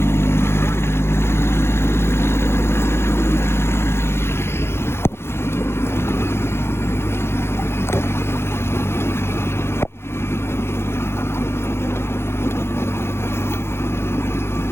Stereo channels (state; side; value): late; right; 0.12 ms